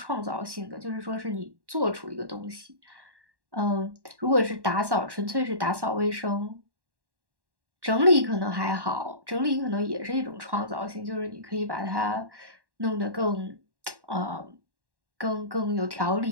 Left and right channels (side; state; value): left; late; 1.1 ms